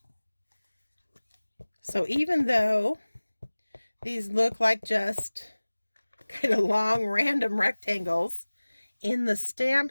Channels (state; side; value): inverted; both; correlation -1.00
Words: So even though these look like just kind of long random rectangles in the stamp